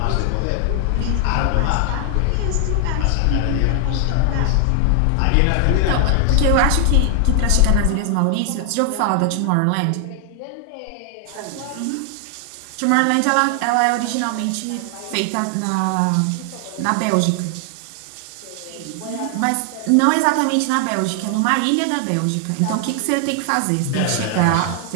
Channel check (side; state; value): both; different; correlation 0.00